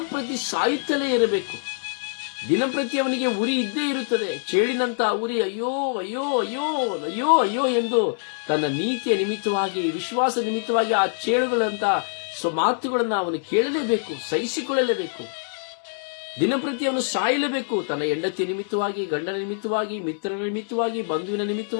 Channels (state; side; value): silent; right; 62 dB below the other